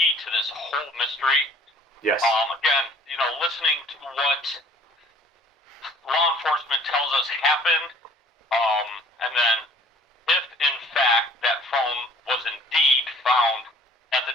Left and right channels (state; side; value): normal; both; correlation 0.53